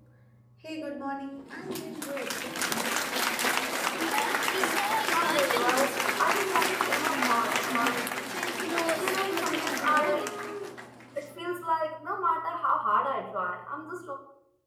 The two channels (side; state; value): both; identical; correlation 1.00